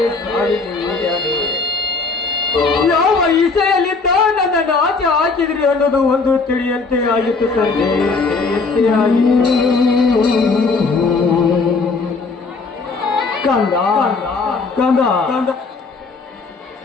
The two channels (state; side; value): quieter; right; 4.2 dB